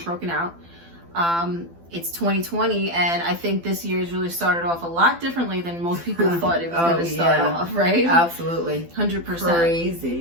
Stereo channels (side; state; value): left; late; 12 ms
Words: broken out. It's 2020, and I think this year has really started off a lot differently than most people thought it was going to start off, right? Absolutely. 100%.